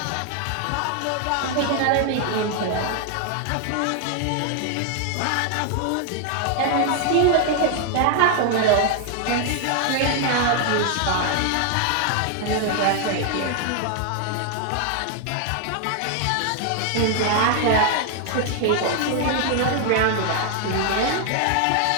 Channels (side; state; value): both; different; correlation 0.00